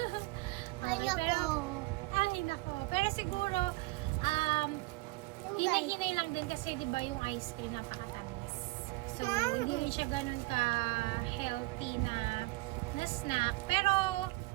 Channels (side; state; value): left; quieter; 22.6 dB